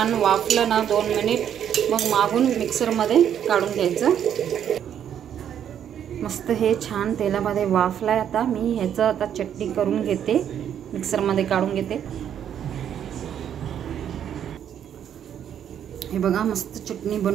वाफलं ना 2 मिनिट, मग मागून मिक्सरमध्ये काढून घ्यायचं। मस्त हे छान तेलामध्ये वाफलाय। आता मी ह्याचं आता चटणी करून घेते, मिक्सरमध्ये काढून घेते। हे बघा, मस्त चटणी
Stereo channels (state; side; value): quieter; left; 9.4 dB